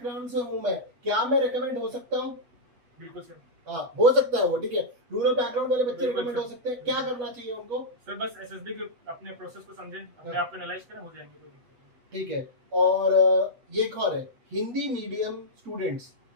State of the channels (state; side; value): late; left; 8.2 ms